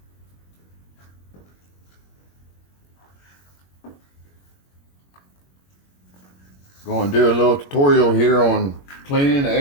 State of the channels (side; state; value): right; late; 21 ms